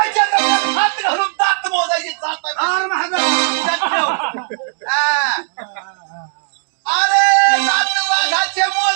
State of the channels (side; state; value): left; silent; digital silence